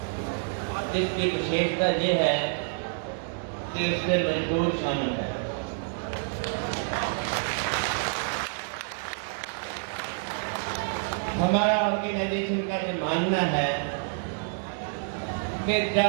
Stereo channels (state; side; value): silent; left; 59 dB below the other